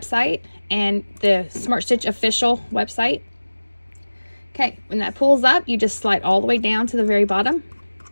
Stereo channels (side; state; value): both; inverted; correlation -1.00